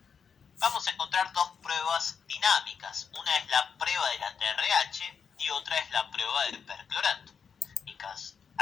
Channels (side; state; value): right; quieter; 6.5 dB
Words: Vamos a encontrar dos pruebas dinámicas. Una es la prueba de la TRH y otra es la prueba del perclorato.